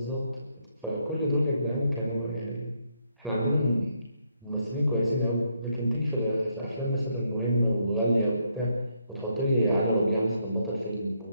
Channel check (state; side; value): inverted; both; correlation -0.75